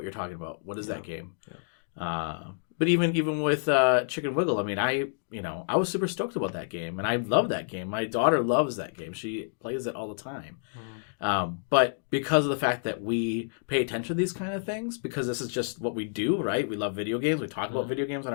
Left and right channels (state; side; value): silent; right; digital silence